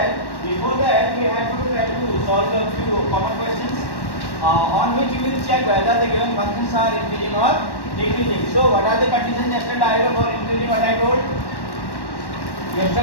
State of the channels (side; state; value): right; late; 1.1 ms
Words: we have to try to solve a few common questions on which we will check whether the given functions are increasing or decreasing. So, what are the conditions yesterday for increasing? What I told?